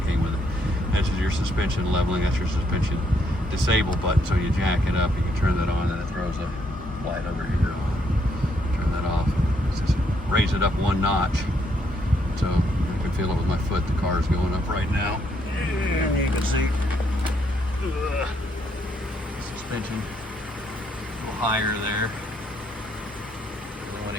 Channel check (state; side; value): normal; both; correlation 0.73